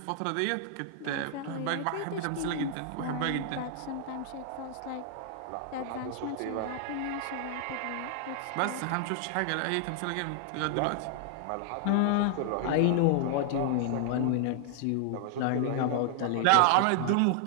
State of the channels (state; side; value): different; both; correlation -0.01